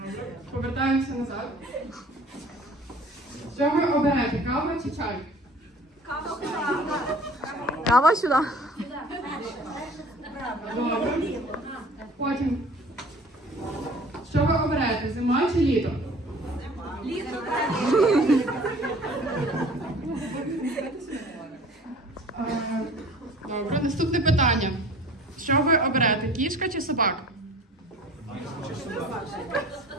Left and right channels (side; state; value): both; normal; correlation 0.47